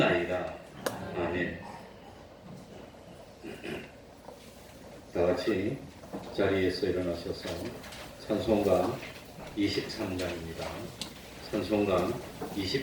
아멘. 다 같이 자리에서 일어나셔서 찬송가 23장입니다. 찬송가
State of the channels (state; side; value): identical; both; correlation 1.00